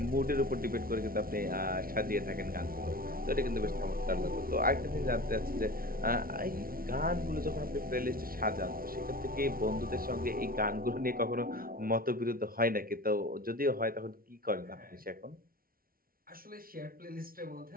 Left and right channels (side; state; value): left; late; 0.43 ms